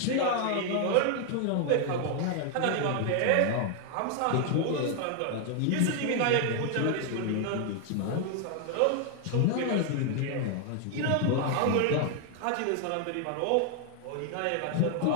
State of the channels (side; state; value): both; different; correlation 0.00